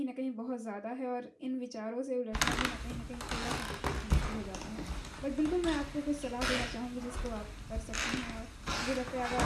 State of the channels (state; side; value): identical; both; correlation 1.00